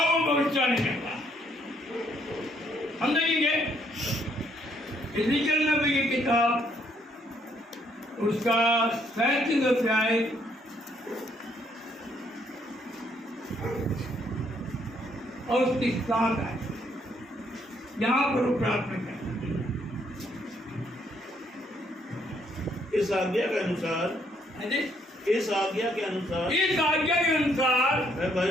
भविष्यवाणी करता हम देखेंगे इज़ेकियल नबी की किताब, उसका 37 अध्याय और उसकी 7 आयत, यहाँ पर वो प्रार्थना करते हैं। इस आज्ञा के अनुसार, इस आज्ञा के अनुसार, इस आज्ञा के अनुसार मैं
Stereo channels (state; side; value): normal; both; correlation 0.70